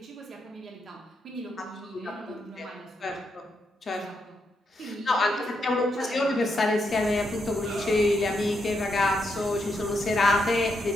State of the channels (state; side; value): normal; both; correlation 0.81